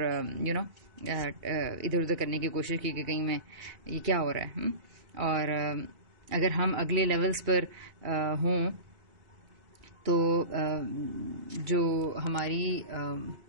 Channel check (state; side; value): late; left; 2.3 ms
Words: ادھر ادھر کرنے کی کوشش کی کہ کہیں میں یہ کیا ہو رہا ہے. اور اگر ہم اگلے لیولز پر ہوں تو جو ہماری